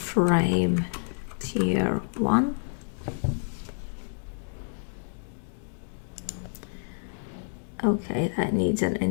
tier 1. Okay, that needs an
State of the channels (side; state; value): right; silent; digital silence